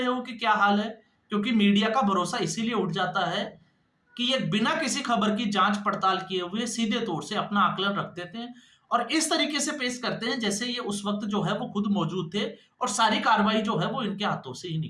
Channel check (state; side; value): identical; both; correlation 1.00